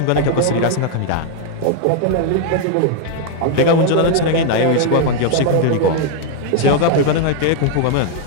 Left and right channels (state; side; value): different; both; correlation 0.00